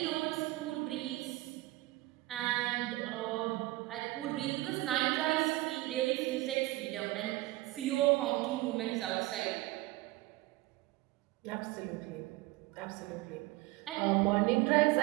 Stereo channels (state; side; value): quieter; left; 19.4 dB